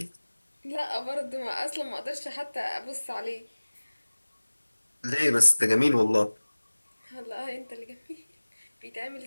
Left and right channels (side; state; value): both; inverted; correlation -1.00